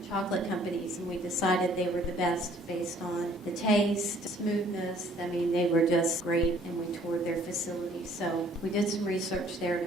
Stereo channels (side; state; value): both; normal; correlation 0.58